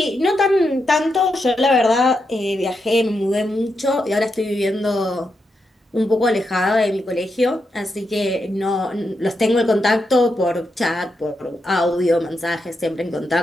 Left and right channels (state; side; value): normal; both; correlation 0.84